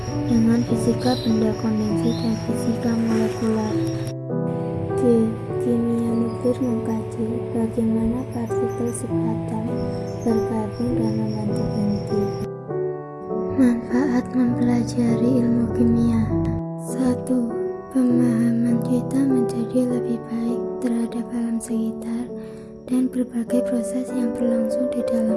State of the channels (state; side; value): identical; both; correlation 1.00